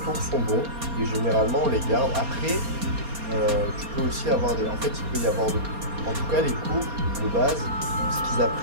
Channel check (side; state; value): left; late; 4.3 ms